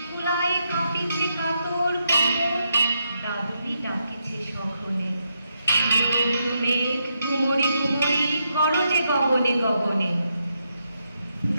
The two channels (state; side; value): inverted; both; correlation -0.81